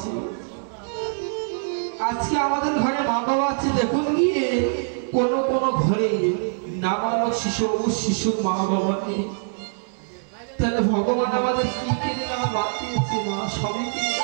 আজকে আমাদের ঘরে মা বাবা আছে। দেখুন গিয়ে কোন কোন ঘরে নাবালক শিশুর মা বাবা নেই। তাহলে ভগবান আমাদের কি কেড়ে নেওয়া বাদ দিয়েছে? মা সবই কেড়ে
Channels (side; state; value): left; silent; digital silence